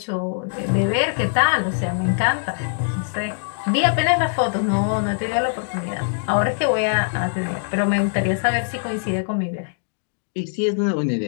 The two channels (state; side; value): silent; right; digital silence